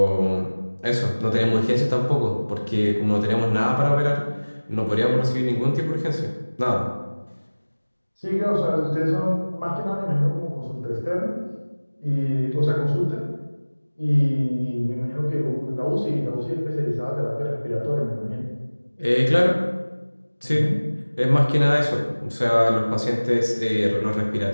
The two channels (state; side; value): inverted; both; correlation -1.00